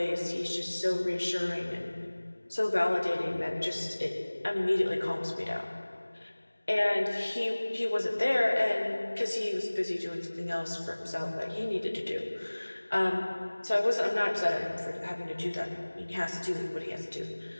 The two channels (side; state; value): both; inverted; correlation -1.00